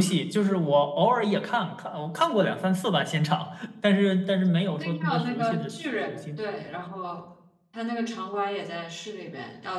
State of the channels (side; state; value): both; identical; correlation 1.00